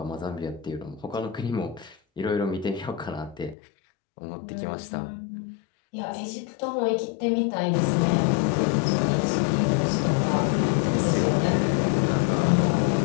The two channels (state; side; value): drops out; right; at 3.6 s